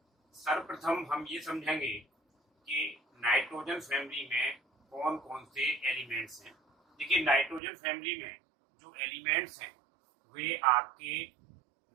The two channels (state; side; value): drops out; left; at 7.6 s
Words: सर्वप्रथम हम ये समझेंगे कि नाइट्रोजन फैमिली में कौन कौन से एलिमेंट्स हैं। देखिए, नाइट्रोजन फैमिली में जो एलिमेंट्स हैं वे आपके